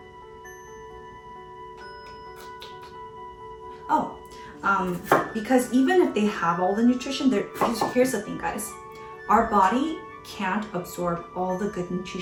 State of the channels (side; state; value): both; identical; correlation 1.00